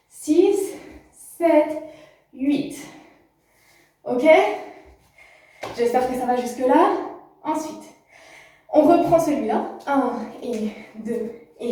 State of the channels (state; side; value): identical; both; correlation 1.00